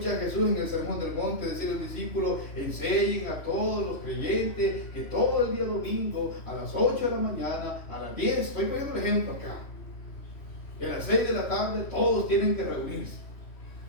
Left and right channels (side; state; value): right; late; 3.1 ms